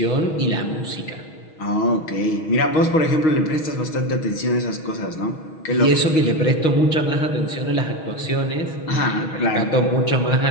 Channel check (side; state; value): right; late; 6.3 ms